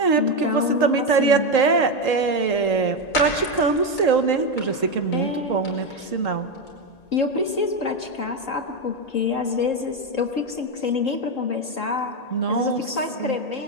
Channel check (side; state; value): right; late; 1.8 ms